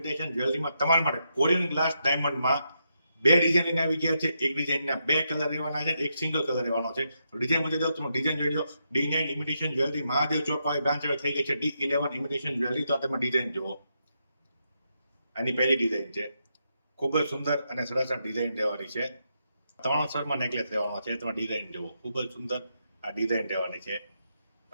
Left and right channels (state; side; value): inverted; both; correlation -0.82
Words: જ્વેલરીમાં તમારા માટે કોરિયન ગ્લાસ ડાયમંડમાં બે ડિઝાઇન આવી ગયા છે. એક ડિઝાઇનના બે કલર રહેવાના છે, એક સિંગલ કલર રહેવાનો છે. ડિઝાઇન બતાવી દઉં, તમે ડિઝાઇન જોઈ લો. D9 ઇમિટેશન જ્વેલરી મહાદેવ ચોક પાસે બ્રાન્ચ થઈ ગઈ છે. D11 imitation jewellery. તો તમે ડિઝાઇન જુઓ. આની પહેલી ડિઝાઇન છે. ખૂબ જ સુંદર અને સરસ ડિઝાઇન રહેવાની છે. 3 સ્તરમાં નેકલેસ રહેવાનો છે. તમે ડિઝાઇન જુઓ, ખૂબ જ સુંદર આ ડિઝાઇન રહેવાની છે.